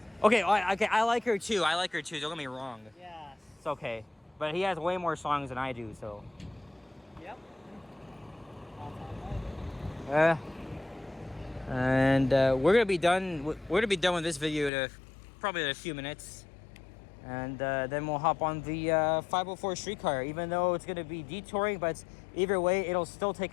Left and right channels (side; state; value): right; drops out; at 14.7 s